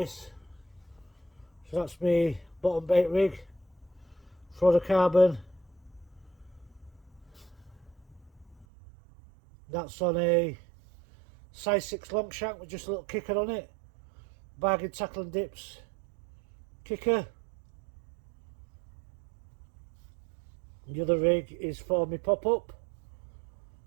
So that's my bottom bait rig, fluorocarbon. That's on a size 6 long shank with just a little kicker on it. Bargain tackle and dips kicker. The other rig is for my pop-up,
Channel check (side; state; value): left; drops out; at 8.7 s